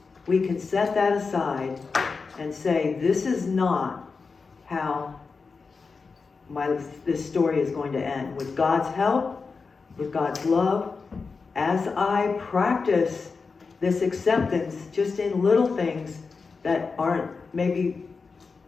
we can set that aside and say, this is not how this story is going to end. With God's help, with God's love, as I practice this acceptance just in little things that aren't maybe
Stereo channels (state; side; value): quieter; right; 4.7 dB